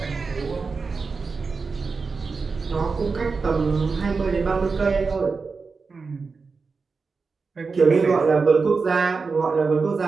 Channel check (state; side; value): quieter; left; 4.6 dB